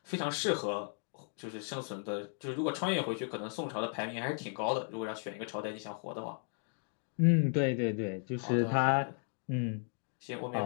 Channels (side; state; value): right; silent; 54 dB below the other